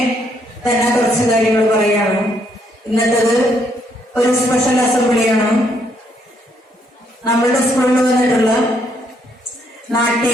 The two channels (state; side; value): normal; both; correlation 0.72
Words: തന്നെ കുറച്ച് കാര്യങ്ങൾ പറയാണ്. ഇന്നത്തേത് ഒരു സ്പെഷ്യൽ അസംബ്ലിയാണ്. നമ്മളുടെ സ്കൂളിൽ വന്നിട്ടുള്ള